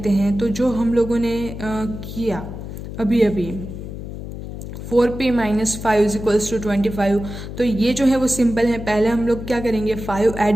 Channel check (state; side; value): noise; left; hum, 9 dB below the sound